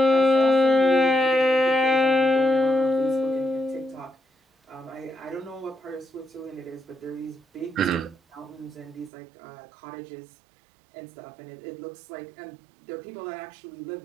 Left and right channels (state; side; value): drops out; left; at 9.1 s